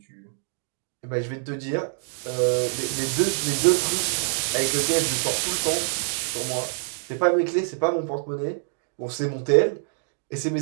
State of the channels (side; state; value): left; silent; digital silence